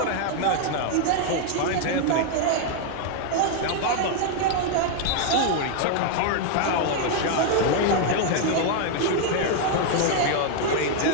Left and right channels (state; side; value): different; both; correlation 0.00